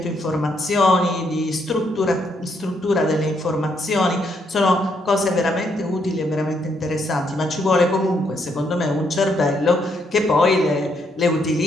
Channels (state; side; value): normal; both; correlation 0.74